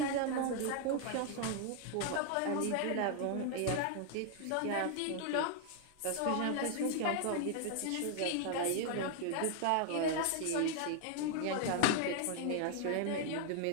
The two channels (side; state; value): both; different; correlation 0.00